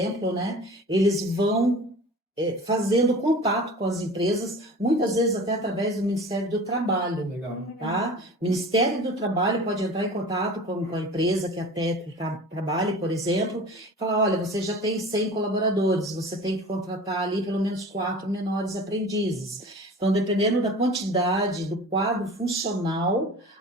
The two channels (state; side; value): normal; both; correlation 0.39